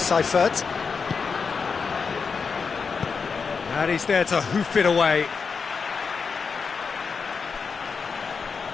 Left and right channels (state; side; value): quieter; right; 5.4 dB